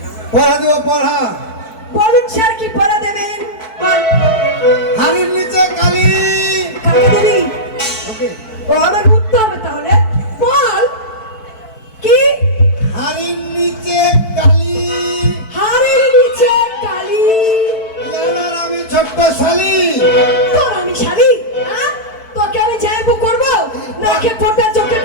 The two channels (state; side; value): late; right; 4.5 ms